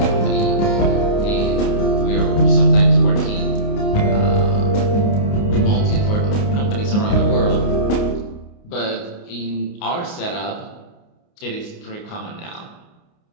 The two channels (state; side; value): late; right; 29 ms